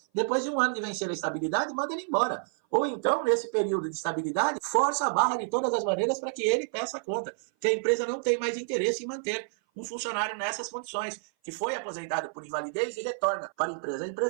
depois de um ano de vencer a estabilidade, manda ele embora. Ou então, nesse período de estabilidade, força a barra de todas as maneiras para que ele peça a conta, que a empresa não tem mais interesse em manter um funcionário nessas condições, que foi aposentado por invalidez e retorna para a empresa. A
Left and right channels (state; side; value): silent; left; 57 dB below the other